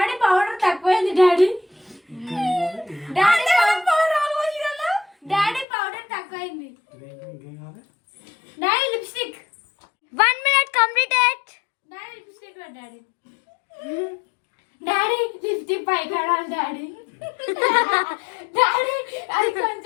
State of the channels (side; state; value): right; drops out; at 5.7 s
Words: పౌడర్ తక్కువైంది. డాడీ పౌడర్ తక్కువైంది. Daddy lipstick 1 minute completed. Daddy lipstick daddy lipstick పై కడాలి డాడీ. డాడీ అది